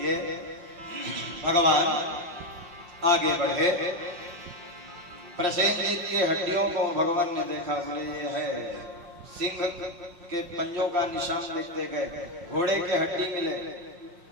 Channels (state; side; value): late; left; 5.7 ms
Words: भगवान आगे बढ़े। प्रसेनजीत की हड्डियों को भगवान ने देखा, बोले ये है सिंह के पंजों का निशान देखते गए, घोड़े के हड्डी मिले,